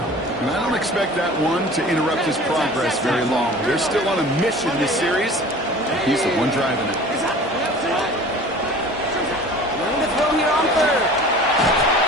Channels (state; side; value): normal; both; correlation 0.42